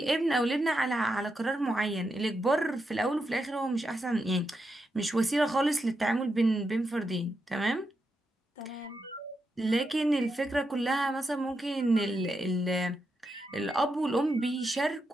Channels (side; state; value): both; normal; correlation 0.85